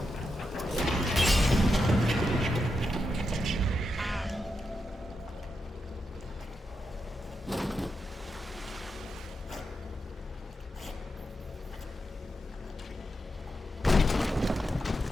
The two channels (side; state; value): both; normal; correlation 0.86